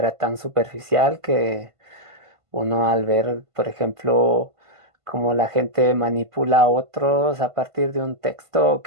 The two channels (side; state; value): left; late; 1.5 ms